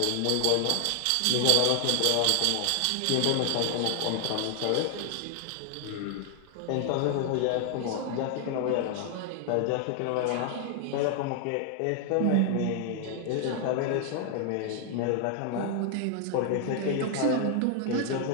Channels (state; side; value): different; both; correlation 0.00